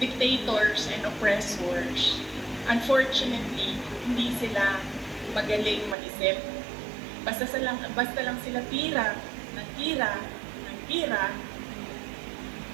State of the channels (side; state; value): left; drops out; at 6.0 s